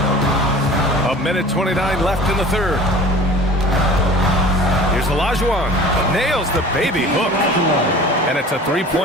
1:29 left in the third. Here's Olajuwon. Nails the baby hook. And it's a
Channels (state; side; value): normal; both; correlation 0.42